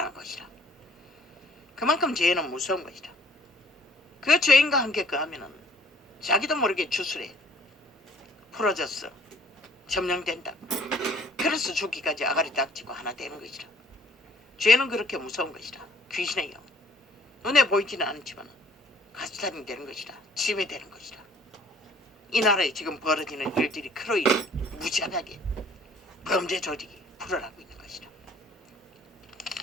것이라. 그만큼 죄는 무서운 것이다. 그 죄인과 함께 거하면 자기도 모르게 주술에 풀어졌어. 점령된다. 그래서 죽기까지 아가리 닥치고 하나 되는 것이라. 죄는 그렇게 무서운 것이라. 귀신의 영. 눈에 보이지는 않지만 가스탄이 되는 것이라. 짐이 되는 것이라. 이 나라에 지금 벌어지는 일들이 크로이 무지하게 범죄 범죄 조직이 풀어나고 있는 것이다.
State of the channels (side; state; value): both; normal; correlation 0.58